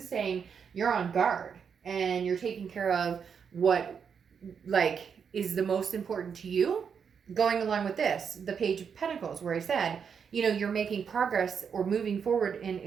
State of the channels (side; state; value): left; quieter; 6.8 dB